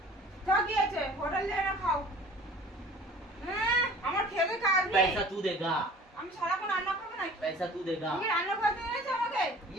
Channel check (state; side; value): normal; both; correlation 0.47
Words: কা কি আছে? হোটেল যাই না খাও। হ্যাঁ, আমার খেতে কাজ নেই। पैसा तू देगा। আমি সারাক্ষণ রান্না করবো নাকি? पैसा तू देगा। তুমি রান্না করতে এনেছো আমাকে?